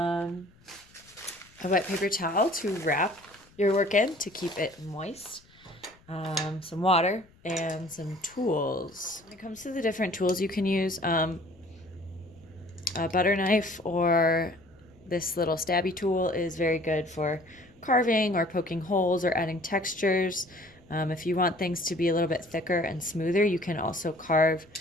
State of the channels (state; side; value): noise; left; rumble, 28 dB below the sound